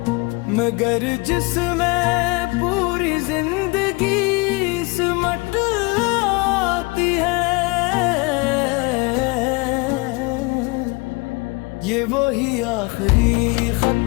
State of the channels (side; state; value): right; quieter; 26.7 dB